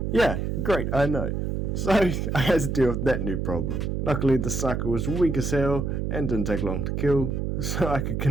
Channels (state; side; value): noise; right; hum, 1 dB below the sound